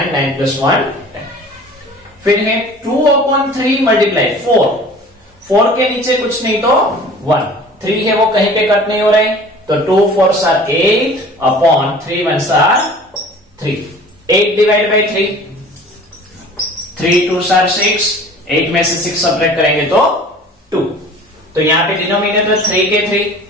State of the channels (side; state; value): both; normal; correlation 0.45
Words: 9 plus 1 10। फिर है 2/3 मल्टीप्लाई 4। 4 के नीचे कुछ नहीं तो 1। 3 है वो कहीं पे कट नहीं हो रहे तो 2 4s are 8/3 1s are 3। 8 divide by 3, 3 2s are 6, 8 में से 6 सब्ट्रैक्ट करेंगे तो 2। तो यहां पे डिनोमिनेटर 3 के 3,